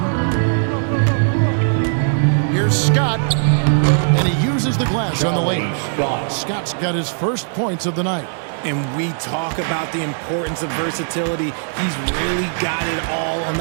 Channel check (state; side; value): silent; left; digital silence